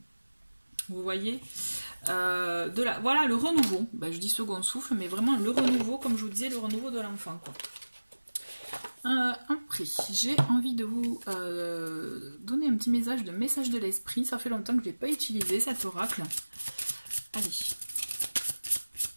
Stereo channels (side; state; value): both; inverted; correlation -1.00